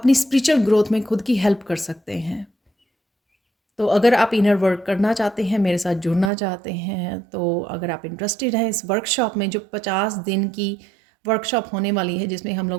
स्पिरिचुअल ग्रोथ में खुद की हेल्प कर सकते हैं। तो अगर आप इनर वर्क करना चाहते हैं, मेरे साथ जुड़ना चाहते हैं, तो अगर आप इंटरेस्टेड हैं इस वर्कशॉप में, जो 50 दिन की वर्कशॉप होने वाली है, जिसमें हम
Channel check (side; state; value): left; drops out; at 6.3 s